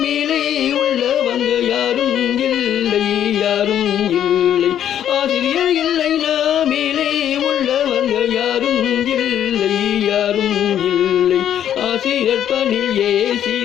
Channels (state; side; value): quieter; right; 10.3 dB